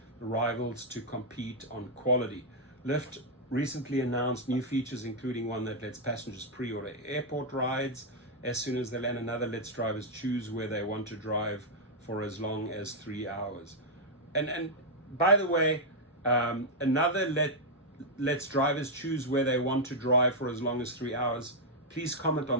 the rivals to compete on quality. Lyft recently announced new features, including one that lets passengers pre-order airport rides as soon as they land. Another lets drivers choose where they want to drive for as long as 3 hours. And by the way, another lets drivers choose where they want to drive for as long as 3 hours. Please comment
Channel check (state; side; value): normal; both; correlation -0.03